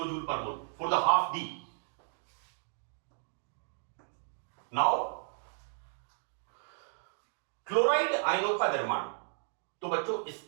joule per mole for the half D। Now chloride आयनों का निर्माण। तो बच्चों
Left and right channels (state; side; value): silent; left; 55 dB below the other